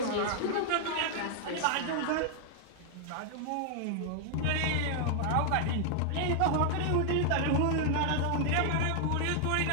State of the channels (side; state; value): both; different; correlation 0.00